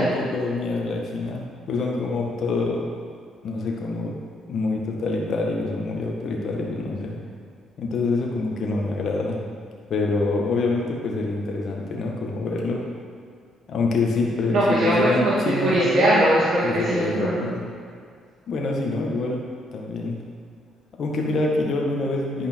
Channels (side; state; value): both; normal; correlation 0.72